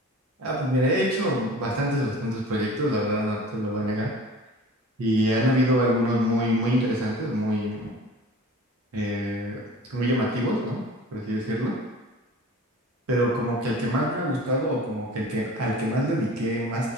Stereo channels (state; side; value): normal; both; correlation 0.43